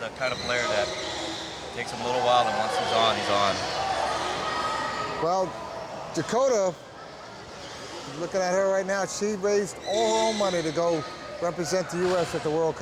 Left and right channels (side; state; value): both; identical; correlation 1.00